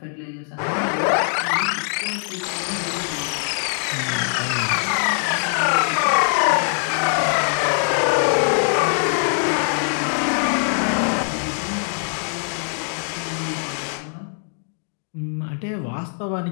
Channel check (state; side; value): silent; right; 60 dB below the other